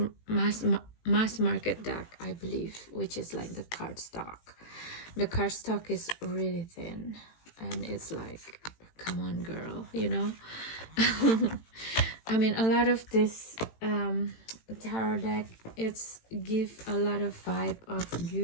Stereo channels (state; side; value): late; right; 18 ms